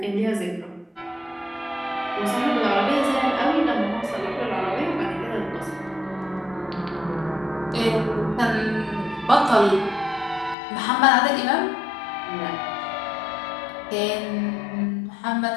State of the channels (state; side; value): drops out; right; at 10.6 s